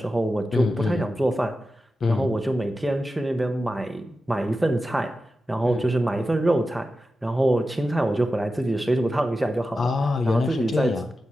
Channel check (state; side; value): normal; both; correlation 0.92